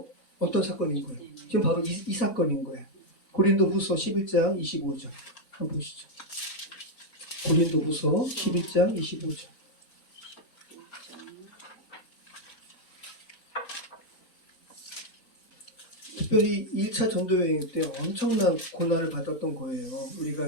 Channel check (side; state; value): both; normal; correlation 0.01